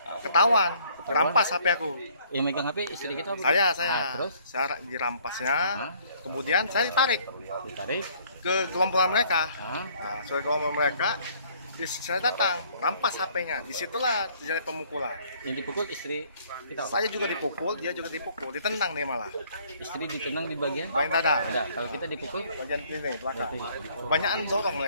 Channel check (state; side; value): inverted; both; correlation -0.60